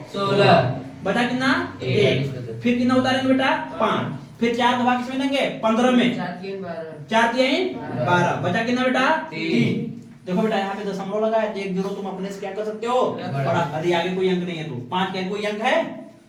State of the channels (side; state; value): both; identical; correlation 1.00